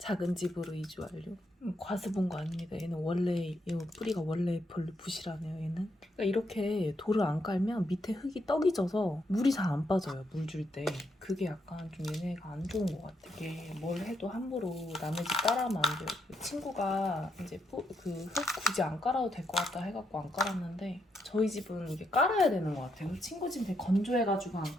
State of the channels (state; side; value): normal; both; correlation 0.78